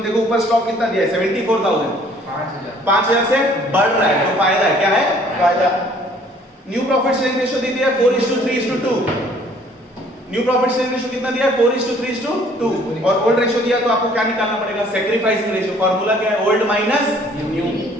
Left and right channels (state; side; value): normal; both; correlation 0.58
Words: देखो ऊपर स्टॉक कितना दिया है 74,000, 5000 से बढ़ रहा है, तो फायदा है। क्या है? फायदा। न्यू प्रॉफिट शेयरिंग रेशियो दी है 4:3:2। न्यू प्रॉफिट शेयरिंग रेशियो कितना दिया है 4:3:2, और ओल्ड रेशियो दिया तो आपको क्या निकालना पड़ेगा? Sacrificing ratio. फार्मूला क्या है? Old minus new.